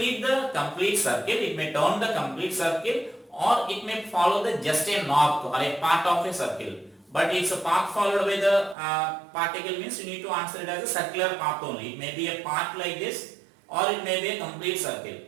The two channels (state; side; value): drops out; left; at 8.8 s